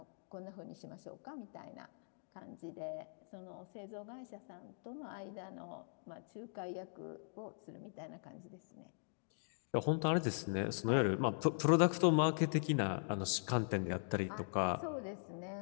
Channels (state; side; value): silent; right; digital silence